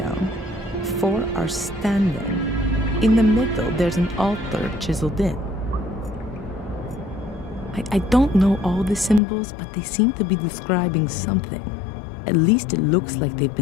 4 are standing. In the middle, there's an altar chiseled in. I don't know all the symbols, but they seem to be describing something. At least it looks like they've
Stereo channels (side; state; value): right; drops out; at 9.2 s